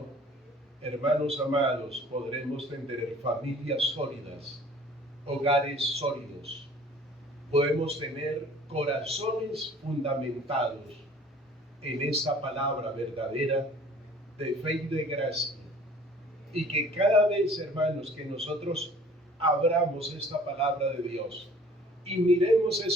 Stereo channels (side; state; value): both; normal; correlation 0.51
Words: hermanos amados, podremos tener familias sólidas, hogares sólidos. Podemos tener corazones fundamentados en esa palabra verdadera de fe y de gracia. Y que cada vez, hermanos, que nosotros abramos esta palabra de Dios y miremos